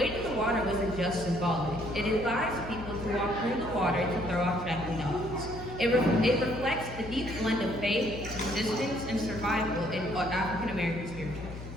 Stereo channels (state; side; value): noise; left; hum, 11 dB below the sound